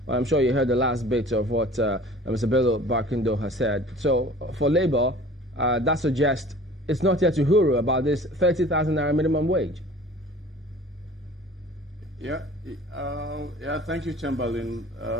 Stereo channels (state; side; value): normal; both; correlation 0.46